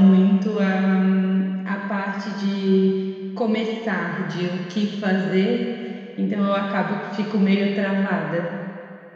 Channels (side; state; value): both; identical; correlation 1.00